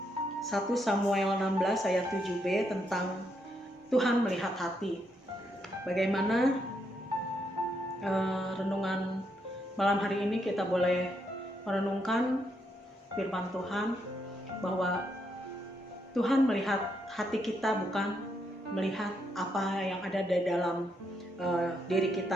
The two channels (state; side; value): normal; both; correlation 0.78